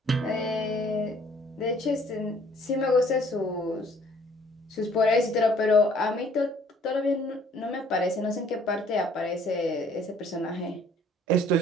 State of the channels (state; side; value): normal; both; correlation 0.58